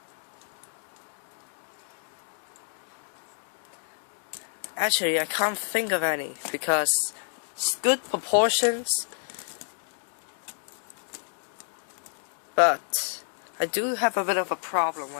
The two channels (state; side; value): silent; right; digital silence